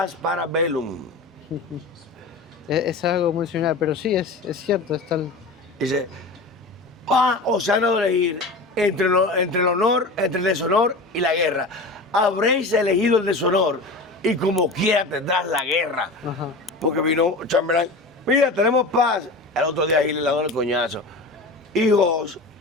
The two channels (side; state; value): right; quieter; 3.2 dB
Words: para bellum. Es algo muy similar, pero sí, es cierto. Dice, o sea, no elegir entre el honor, entre el deshonor y la guerra. Habréis elegido el deshonor y como quiera tendrás la guerra. Ajá. Porque vino Chamberlain, mira, tenemos paz. El otro día Hitler le dio el coñazo. Y Goss,